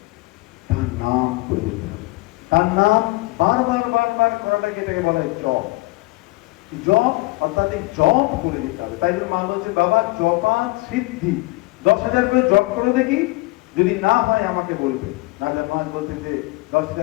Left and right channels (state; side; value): quieter; right; 22.5 dB